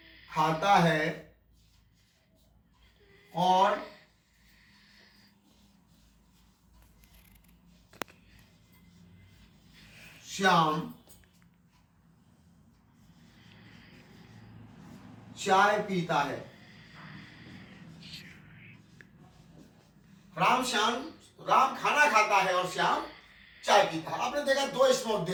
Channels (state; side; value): identical; both; correlation 1.00